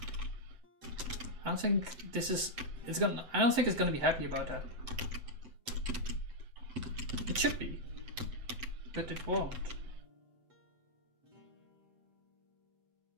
I don't think this is. I don't think it's gonna be happy about that. It should be, but it won't.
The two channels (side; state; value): left; late; 7.9 ms